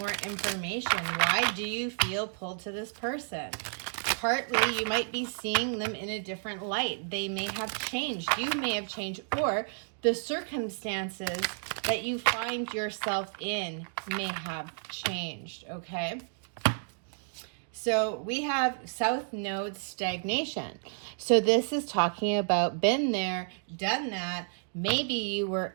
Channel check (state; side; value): silent; left; digital silence